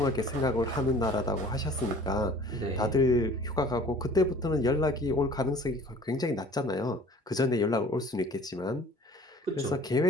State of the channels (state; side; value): normal; both; correlation 0.48